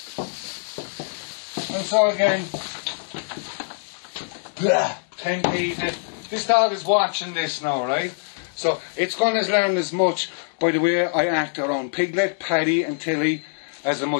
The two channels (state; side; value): silent; right; digital silence